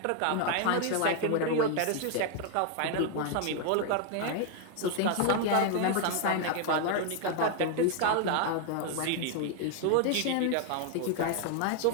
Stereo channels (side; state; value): both; different; correlation 0.01